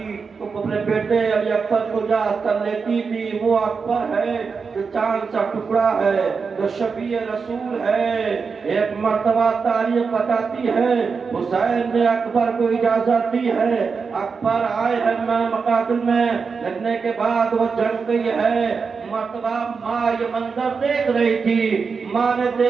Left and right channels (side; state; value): left; quieter; 5.2 dB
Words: تو اپنے بیٹے علی اکبر کو یاد کر لیتی تھی۔ وہ اکبر ہے جو چاند سا ٹکڑا ہے، جو شفیع رسول ہے۔ ایک مرتبہ تاریخ بتاتی ہے حسین نے اکبر کو اجازت دی ہے، اکبر آئے ہیں مقاتل میں، لڑنے کے بعد وہ جنگ گئی ہے۔ مرتبہ ماں یہ منظر دیکھ رہی تھی، ماں نے